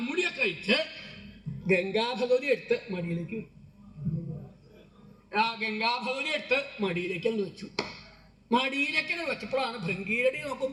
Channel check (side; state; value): both; identical; correlation 1.00